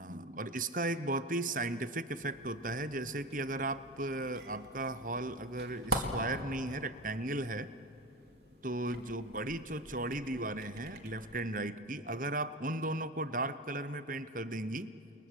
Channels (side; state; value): both; normal; correlation 0.25